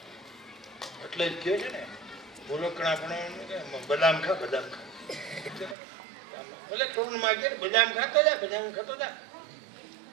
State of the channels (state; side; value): drops out; left; at 5.8 s